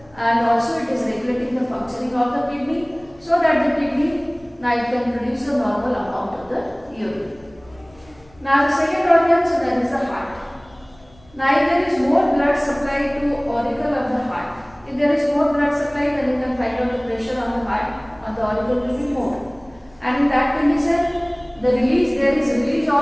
and also it is regulating the functioning of the kidney, so that the kidney now it can produce a normal amount of the urine. Now the second organ, so that is the heart. Now if there is more blood supply to auricle of the heart, if there is more blood supply, then you can find out the pressure on the heart or the auricle will be more. And in that condition, there is release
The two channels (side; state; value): left; noise; rumble, 28 dB below the sound